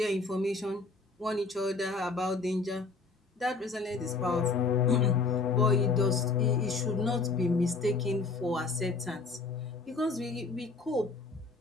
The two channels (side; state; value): right; quieter; 4.0 dB